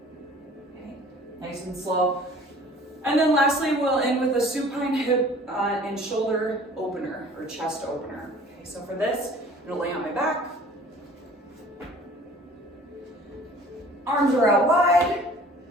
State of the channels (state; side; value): normal; both; correlation 0.49